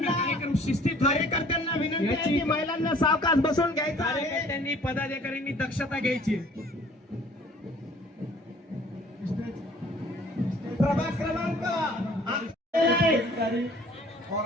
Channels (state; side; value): normal; both; correlation 0.54